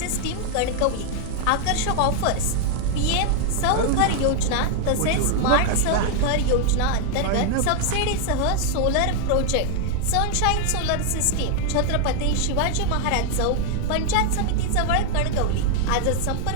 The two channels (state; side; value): different; both; correlation 0.00